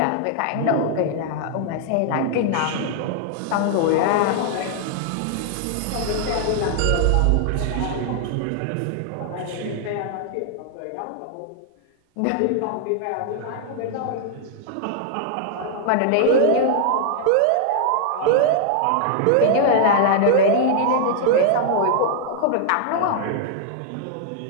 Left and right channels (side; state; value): both; different; correlation -0.01